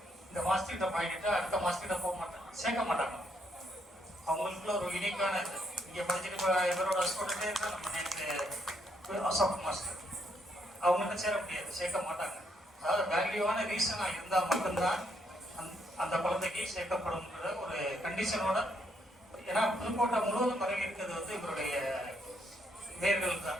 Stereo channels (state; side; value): normal; both; correlation 0.74